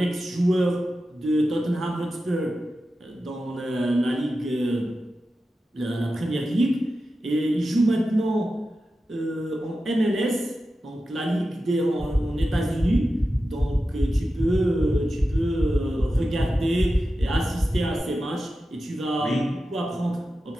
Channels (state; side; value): normal; both; correlation 0.92